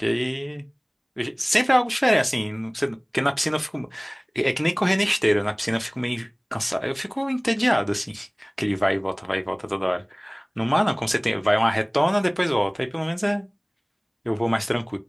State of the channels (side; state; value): both; identical; correlation 1.00